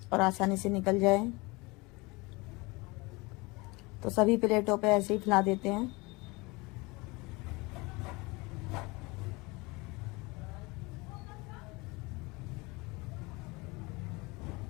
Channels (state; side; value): quieter; right; 25.0 dB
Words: और आसानी से निकल जाए। तो सभी प्लेटों पे ऐसे ही फैला देते हैं।